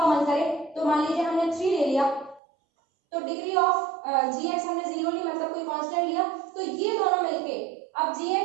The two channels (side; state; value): left; drops out; at 2.4 s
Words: मन करे। तो मान लीजिए हमने 3 ले लिया, तो डिग्री ऑफ gx हमने 0 ली, मतलब कोई कांस्टेंट लिया, तो ये दोनों मिलके अब